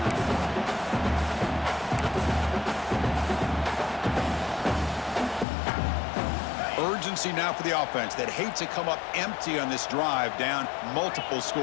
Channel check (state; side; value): drops out; right; at 5.5 s